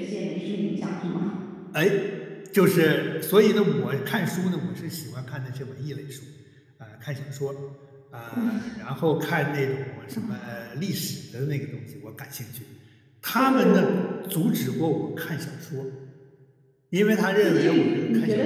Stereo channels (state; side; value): identical; both; correlation 1.00